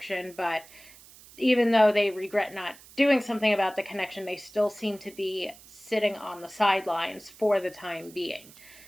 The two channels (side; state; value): right; noise; hiss, 22 dB below the sound